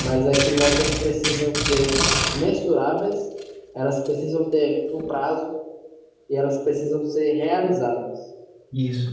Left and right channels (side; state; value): both; identical; correlation 1.00